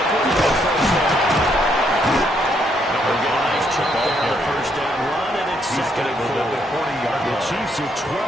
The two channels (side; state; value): both; normal; correlation 0.73